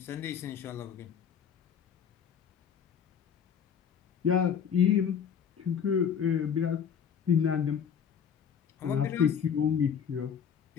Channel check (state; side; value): quieter; right; 7.7 dB